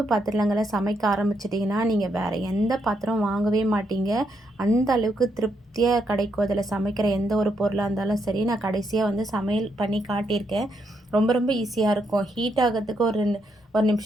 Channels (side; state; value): both; normal; correlation 0.78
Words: பாத்திரங்களை சமைக்க ஆரம்பிச்சிட்டிங்கன்னா நீங்கள் வேறு எந்த பாத்திரம் வாங்கவே மாட்டீங்க. அந்த அளவுக்கு திருப்தியாக கிடைக்கும் அதில் சமைக்கிற எந்த ஒரு பொருளாக இருந்தாலும் சரி. நான் கடைசியாக வந்து சமையல் பண்ணி காட்டியிருக்கேன். ரொம்ப ரொம்ப ஈஸியாக இருக்கும். ஹீட் ஆகிறதுக்கு ஒரு